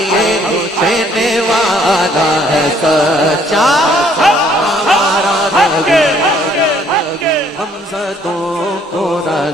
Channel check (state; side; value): normal; both; correlation 0.63